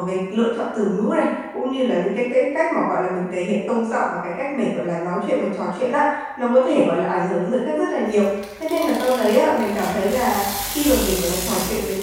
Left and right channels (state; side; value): identical; both; correlation 1.00